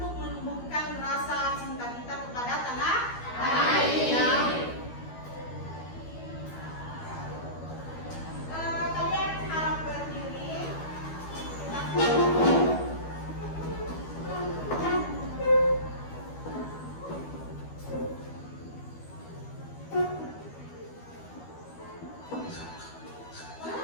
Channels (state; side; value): late; right; 12 ms